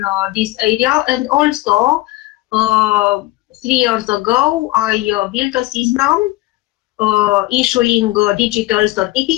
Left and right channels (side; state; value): right; quieter; 19.2 dB